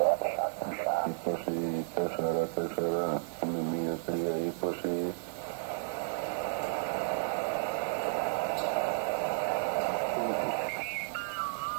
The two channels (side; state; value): left; silent; 56 dB below the other